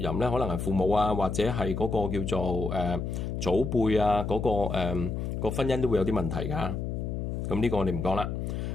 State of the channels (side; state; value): left; noise; hum, 3 dB below the sound